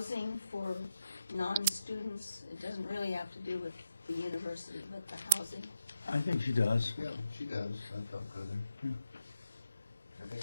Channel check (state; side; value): inverted; both; correlation -0.82